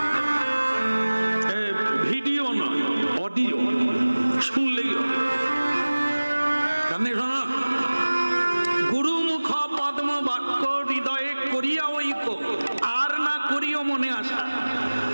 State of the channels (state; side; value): inverted; both; correlation -1.00